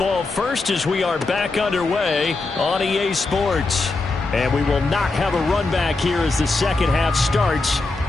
first as we are back underway on EA Sports. And we will not have a run back here as the second half starts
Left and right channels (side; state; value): right; quieter; 3.4 dB